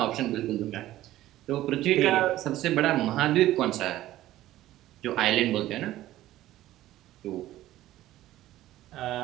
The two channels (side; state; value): left; quieter; 14.7 dB